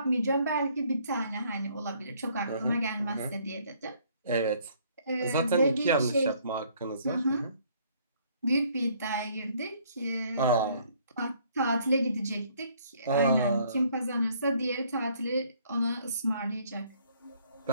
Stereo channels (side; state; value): both; inverted; correlation -0.63